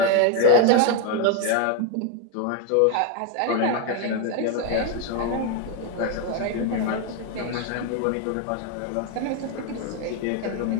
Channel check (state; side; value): different; both; correlation 0.01